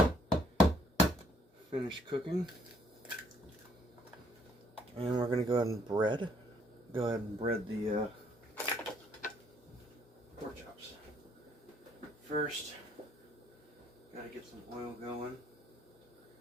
finish cooking. And we're going to go ahead and bread the pork chops. First, gotta get some oil going.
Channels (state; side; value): normal; both; correlation 0.65